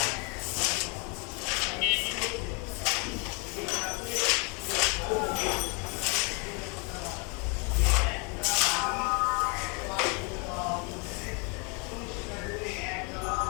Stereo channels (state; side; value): quieter; right; 32.9 dB